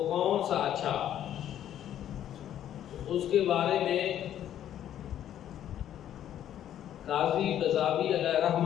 کون سا اچھا، اس کے بارے میں قاضی قذافی علیہ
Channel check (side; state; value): right; quieter; 11.0 dB